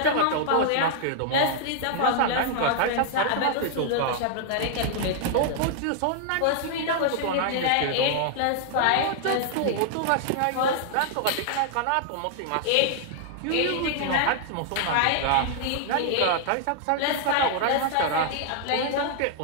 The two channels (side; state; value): both; different; correlation -0.01